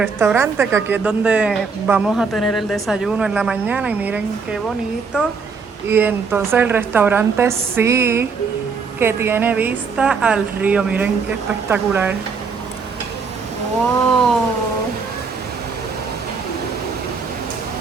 que aquí es donde vamos a tener el desayuno en la mañana y miren qué bonito. Y entonces el restaurante sí que tiene vista al río, miren qué espectacular. Wow.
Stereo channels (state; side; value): quieter; left; 5.1 dB